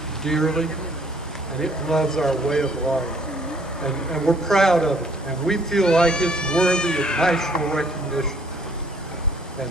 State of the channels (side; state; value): both; normal; correlation 0.61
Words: dearly, and it loves our way of life. And we're proud of it, and we feel like it's worthy of national recognition. And